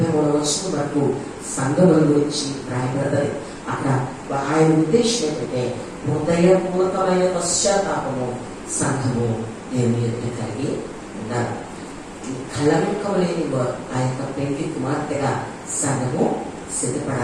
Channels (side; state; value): both; identical; correlation 1.00